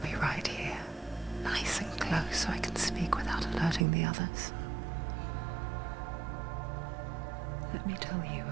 right here, nice and close so I can speak without alerting the others. Let me tell you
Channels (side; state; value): left; drops out; at 3.9 s